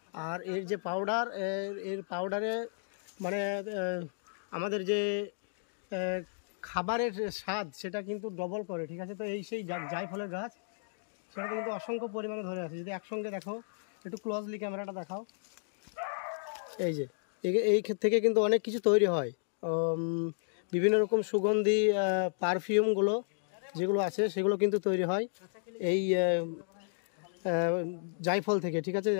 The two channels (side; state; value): right; silent; digital silence